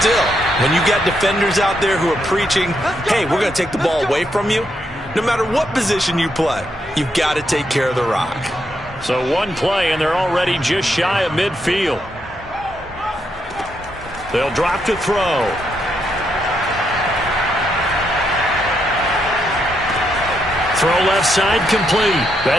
when you got defenders out there who are preaching, hey, we're going to take the ball away from you, no matter what position you play, you've got to take care of the rock. So 1 play, and they're already just shy of midfield. They'll drop to throw. Throw left side complete.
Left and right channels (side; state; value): both; normal; correlation 0.79